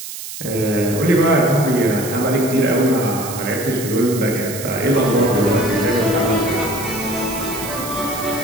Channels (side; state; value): right; noise; hiss, 10 dB below the sound